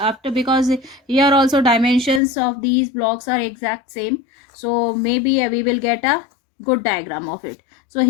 because here also dimensions of these blocks are exact same. So maybe we will get a good diagram of it. So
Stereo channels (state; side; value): drops out; right; at 2.2 s